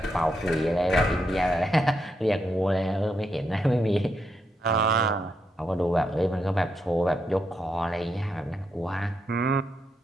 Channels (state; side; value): normal; both; correlation 0.81